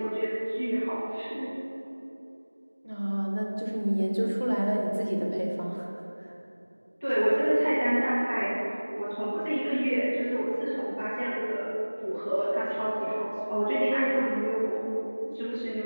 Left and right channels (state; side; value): inverted; both; correlation -1.00